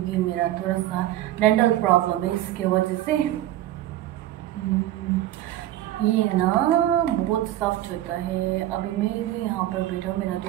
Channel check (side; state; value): left; quieter; 14.0 dB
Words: मेरा थोड़ा सा डेंटल प्रॉब्लम है। इसके वजह से ये ना बहुत सॉफ्ट होता है। अभी मैं भी यहाँ पर बैठा हूँ, मेरा